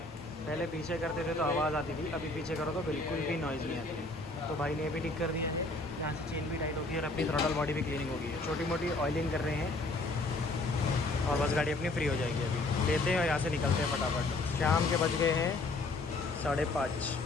पहले पीछे करते थे तो आवाज़ आती थी, अभी पीछे करो तो बिल्कुल भी नॉइज़ नहीं आती है। तो भाई ने ये भी ठीक कर दिया है। यहाँ से चेन भी टाइट होगी और अपनी थ्रॉटल बॉडी भी क्लीनिंग होगी है। छोटी मोटी ऑयलिंग कर रहे हैं और बस गाड़ी अपनी फ्री हो जाएगी। अभी लेते हैं और यहाँ से निकलते हैं फटाफट। शाम के बज गए हैं 5:30।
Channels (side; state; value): right; quieter; 3.0 dB